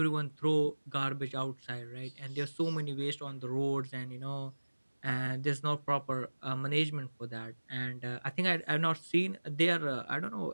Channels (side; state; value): both; inverted; correlation -1.00